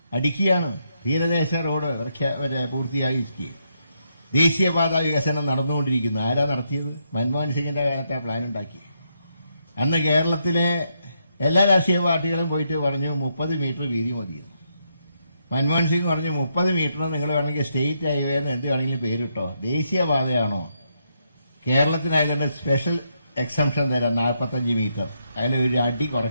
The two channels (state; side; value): inverted; both; correlation -0.79